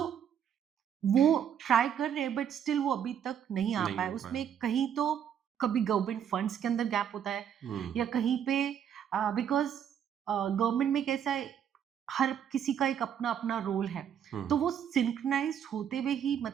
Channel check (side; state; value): left; quieter; 8.8 dB